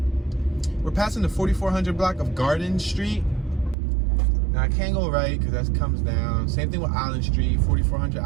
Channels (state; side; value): drops out; left; at 3.8 s